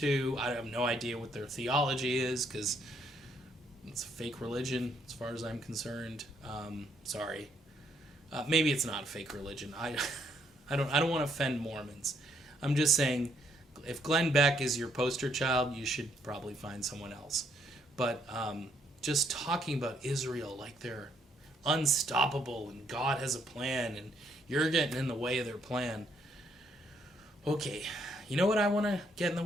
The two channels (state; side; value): normal; both; correlation 0.71